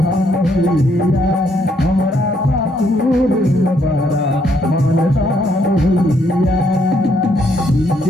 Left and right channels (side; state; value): both; normal; correlation 0.71